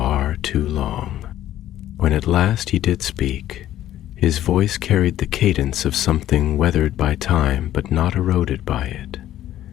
too long. When at last he did speak, His voice carried the cadence of something weathered by time but not eroded by it,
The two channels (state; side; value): quieter; right; 12.8 dB